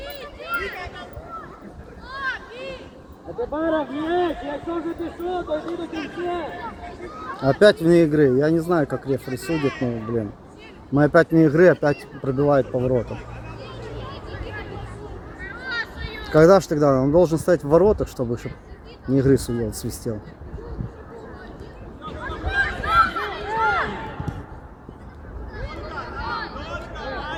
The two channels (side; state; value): both; identical; correlation 1.00